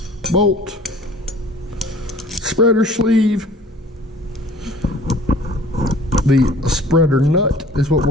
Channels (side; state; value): both; normal; correlation 0.49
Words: bolt, spreader sleeve. The spreader nut is what